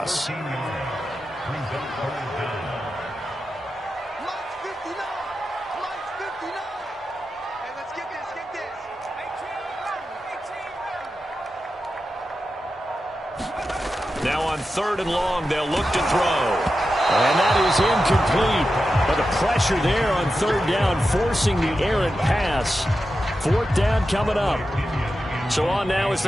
Now on 3rd and long, they'll look to throw. And that is incomplete. But the pressure there on 3rd down, forcing the errant pass. 4th down coming up. So on now is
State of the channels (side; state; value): both; normal; correlation 0.91